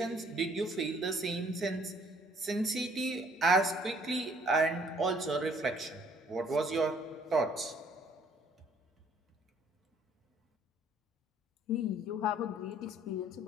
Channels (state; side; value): normal; both; correlation 0.61